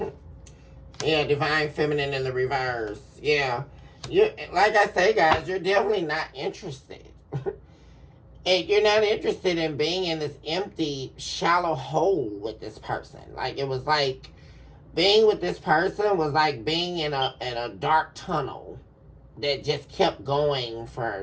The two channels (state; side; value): identical; both; correlation 1.00